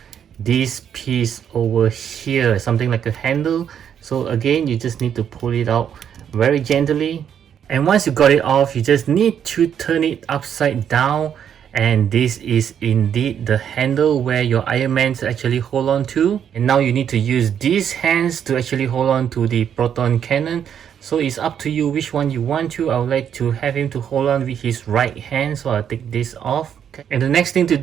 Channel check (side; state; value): left; quieter; 8.7 dB